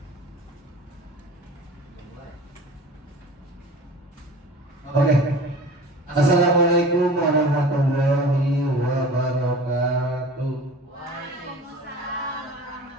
Oke. Assalamualaikum warahmatullahi wabarakatuh.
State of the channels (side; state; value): both; normal; correlation 0.40